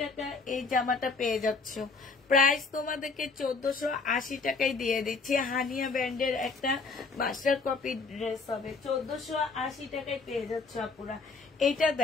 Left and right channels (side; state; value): right; quieter; 4.4 dB